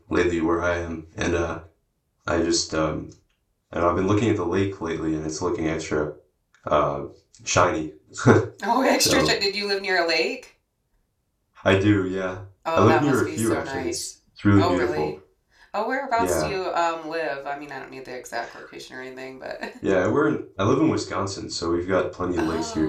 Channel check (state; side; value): identical; both; correlation 1.00